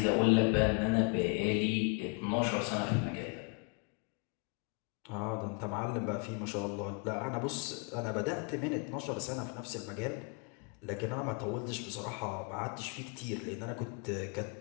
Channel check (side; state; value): right; quieter; 34.6 dB